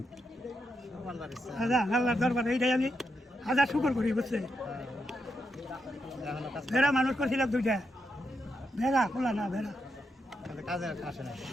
আল্লাহর দরবারে এইটাই আমি হাজার শুকর করি, বুঝছে? ভেড়া মানুষ করছিলাম 2টা, ভেড়া খোলা না ভেড়া কাজে আসে না।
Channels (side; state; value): both; normal; correlation 0.83